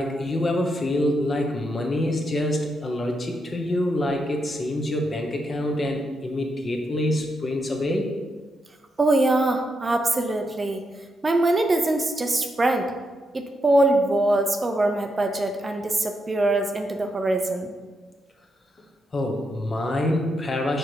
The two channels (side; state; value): both; normal; correlation 0.82